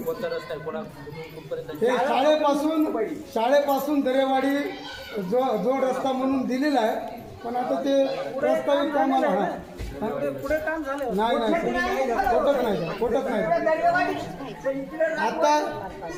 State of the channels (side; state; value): both; identical; correlation 1.00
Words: शाळेपासून दरेवाडी जो रस्ता म्हणून दिलेला आहे पण आता ते प्रस्तावित कामाला पुढे काम झालं नाही नाही सर. कोटक नाही सर, कोटक नाही आता